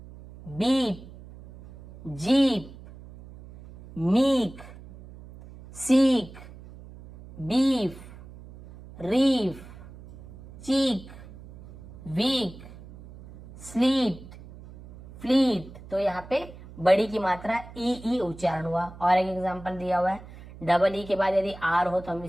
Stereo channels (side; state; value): right; noise; hum, 18 dB below the sound